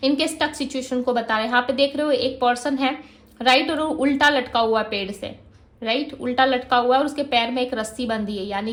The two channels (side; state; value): both; identical; correlation 1.00